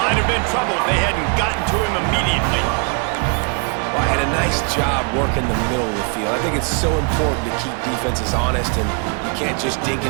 have been trouble if they hadn't gotten to him immediately. Well, had a nice job working the middle of the field. I think it's so important to keep defenses honest, and you can't just dink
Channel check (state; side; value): quieter; left; 35.8 dB